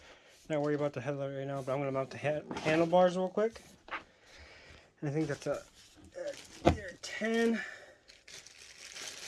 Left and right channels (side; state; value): both; identical; correlation 1.00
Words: not worry about the headlight right now, but I'm going to mount the handlebars real quick. And I think that's a 10.